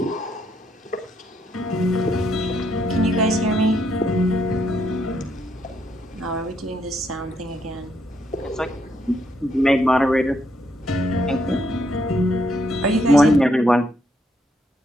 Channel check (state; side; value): normal; both; correlation 0.74